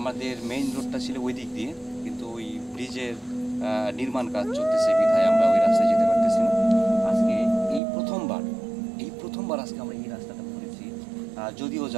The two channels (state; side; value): drops out; left; at 7.8 s